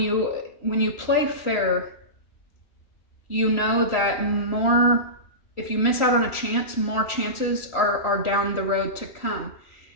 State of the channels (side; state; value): right; late; 3.1 ms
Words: play fair, you know that if you miss out on a chance, more chances are down the road to come.